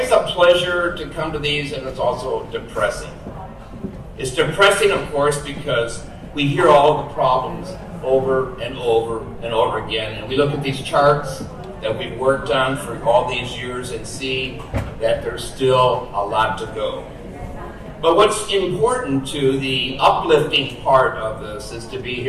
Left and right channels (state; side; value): identical; both; correlation 1.00